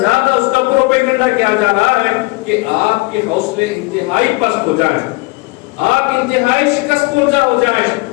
اس کا پروپیگنڈا کیا جا رہا ہے کہ آپ کے حوصلے انتہائی پست ہو جائیں، آپ انتہائی شکست خوردہ ہو جائیں،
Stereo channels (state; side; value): quieter; right; 24.8 dB